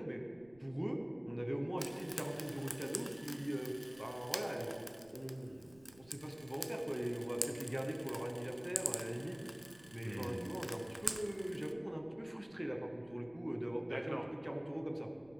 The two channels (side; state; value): right; noise; rumble, 25 dB below the sound